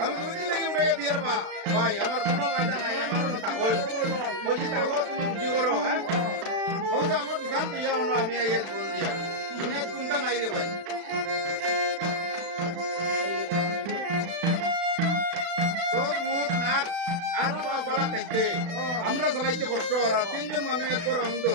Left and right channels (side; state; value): left; late; 36 ms